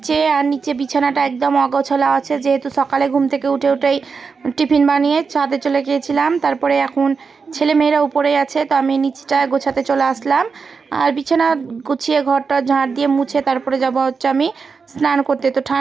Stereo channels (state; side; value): quieter; left; 5.2 dB